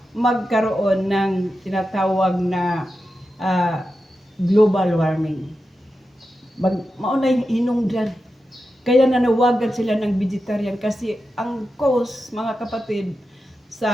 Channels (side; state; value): both; normal; correlation 0.90